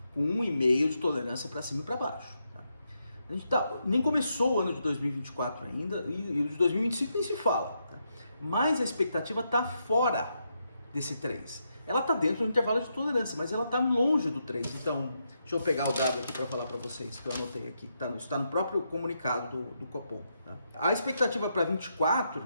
com 1,5 de tolerância para cima e para baixo. A gente nem começou o ano de 2024 ainda, e o de 2025 nem se fala. Tá? Mas a expectativa está fora desse 3. Ela está dentro do intervalo de tolerância, mas ela está longe do 3. Então, deixa eu pegar o dado aqui para falar para vocês, que eu anotei aqui. Está no próprio comunicado do Copom. Tá? A expectativa para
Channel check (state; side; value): inverted; both; correlation -0.82